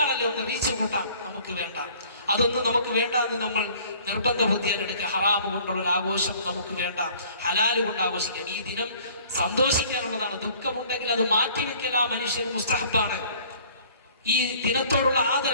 ഒന്ന് റീച്ച് കൂട്ടാം, നമുക്ക് വേണ്ട. അതൊന്നും നമുക്ക് വേണ്ട എന്ന് നമ്മൾ നിർബന്ധ ബുദ്ധിയെടുക്കുക. ഹറാമ് കൊണ്ടുള്ള ഒരു ആഘോഷം നമുക്ക് വേണ്ട, ഹലാല് കൊണ്ട് ആഘോഷിക്കാം. ഈ ദിനം സന്തോഷിക്കാനുള്ളതാണ്. ദുഃഖമുണ്ടെങ്കിൽ അത് മാറ്റിവെക്കൽ ആ മനുഷ്യൻ മുസ്തഹബാണ്. ഈ ദിനത്തോടുള്ള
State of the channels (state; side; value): inverted; both; correlation -0.53